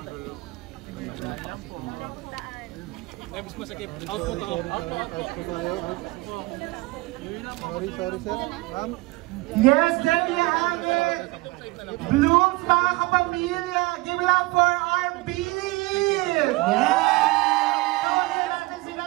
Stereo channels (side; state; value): left; quieter; 22.5 dB